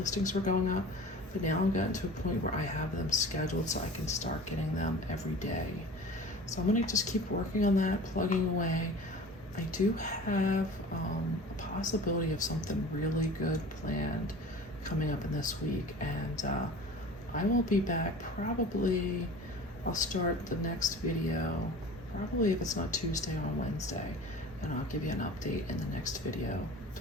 were going up, but now I've gotten to a point where I have them scheduled so I can start getting them every day. So I'm gonna just keep working on that, plugging away. I do have a possibility of something really good planned coming up in this week, and I will be back probably, I'll start the next video, probably if it's not Tuesday, on Wednesday, and I'll give you an update in the next video to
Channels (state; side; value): normal; both; correlation 0.40